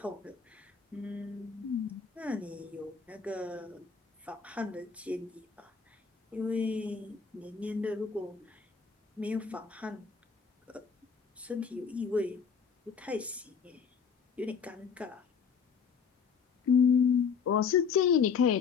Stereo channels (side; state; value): right; quieter; 6.1 dB